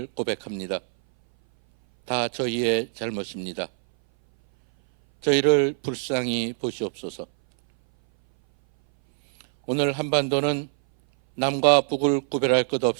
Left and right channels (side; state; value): left; silent; 59 dB below the other